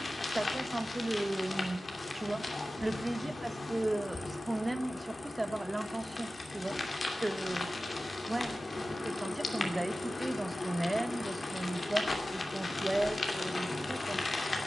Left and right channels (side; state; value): both; normal; correlation 0.95